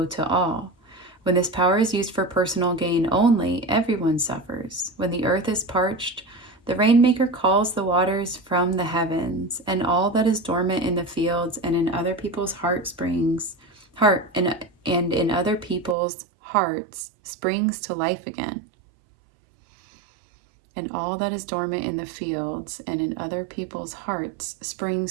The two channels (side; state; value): left; drops out; at 16.0 s